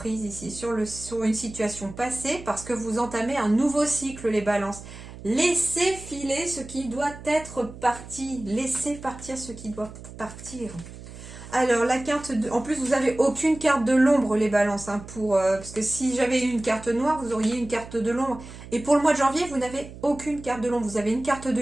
ici sur une situation passée parce que vous entamez un nouveau cycle, les balances. Laissez filer ce qui doit être parti. Laissez partir ce qui doit partir. Alors, la carte de... En plus, vous n'avez aucune carte de l'ombre, les balances. Hein, parce que si j'avais eu une carte noire, vous auriez une carte de l'ombre. Et pour le mois de janvier, vous n'avez aucune carte de l'ombre. Vous avez une carte de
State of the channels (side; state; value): right; noise; hum, 15 dB below the sound